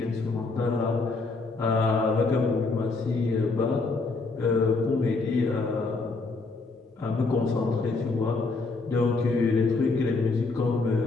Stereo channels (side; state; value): right; quieter; 3.8 dB